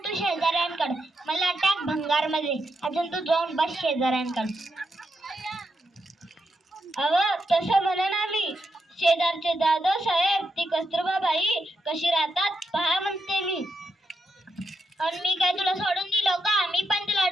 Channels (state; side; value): normal; both; correlation 0.84